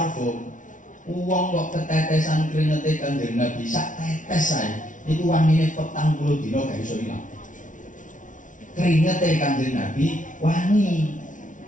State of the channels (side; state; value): right; late; 0.37 ms